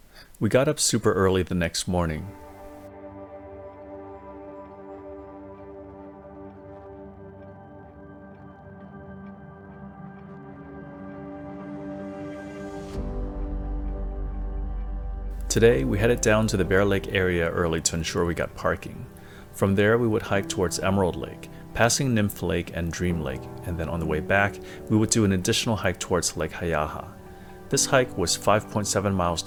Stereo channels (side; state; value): both; identical; correlation 1.00